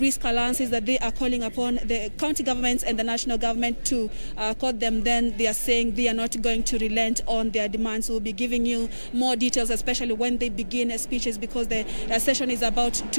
allowances that they are calling upon the county governments and the national government to quote them, then they are saying they are not going to relent on their demands. We'll be giving you more details, especially when they begin speeches, because the session is about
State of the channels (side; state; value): both; inverted; correlation -1.00